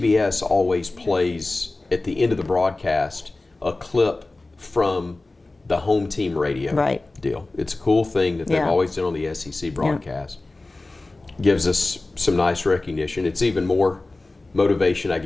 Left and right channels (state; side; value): quieter; right; 3.1 dB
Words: always plays at the end of the broadcast a clip from the home team radio deal. It's a cool thing that they've always done on the SEC broadcast. Gives us some nice recognition. It's even more motivation, I